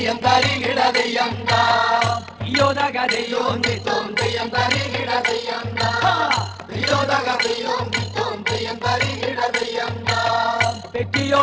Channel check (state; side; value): identical; both; correlation 1.00